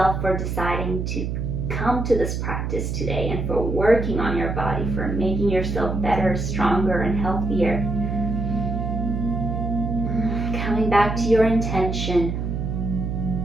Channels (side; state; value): right; noise; hum, 2 dB below the sound